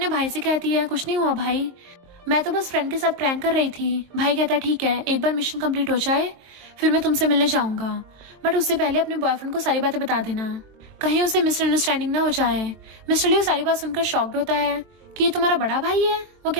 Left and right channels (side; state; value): left; late; 23 ms